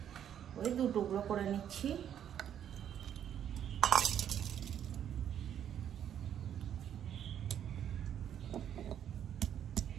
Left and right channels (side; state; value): left; quieter; 9.7 dB